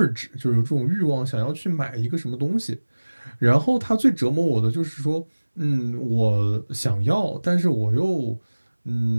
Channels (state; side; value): inverted; both; correlation -1.00